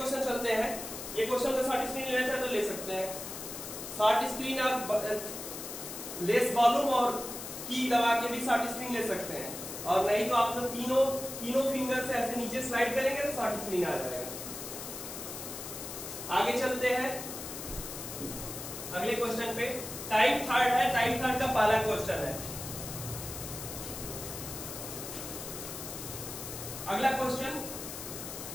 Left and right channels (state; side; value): noise; left; hiss, 8 dB below the sound